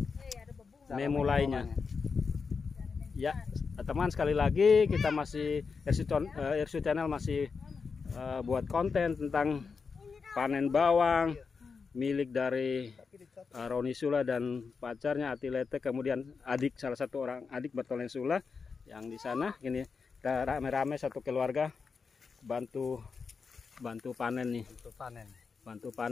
memulainya. Ya, teman, sekali lagi kita masih RSU Channel masih buat konten tentang panen bawang milik dari Roni Sula dan pacarnya Atilete, kemudian salah satu orang adik Bertolen Sula yang di sana. Ini kita rame-rame satu keluarga bantu panen nih. Bantu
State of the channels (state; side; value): quieter; right; 5.2 dB